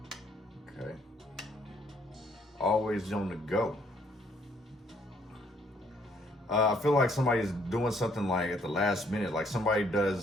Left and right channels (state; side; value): normal; both; correlation 0.67